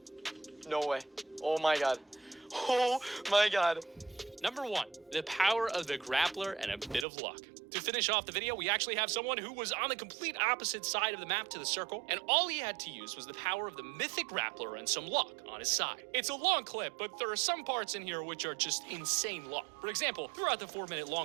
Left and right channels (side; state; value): left; drops out; at 7.1 s